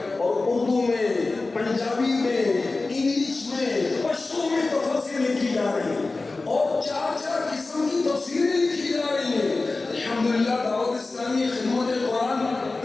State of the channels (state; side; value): quieter; right; 3.5 dB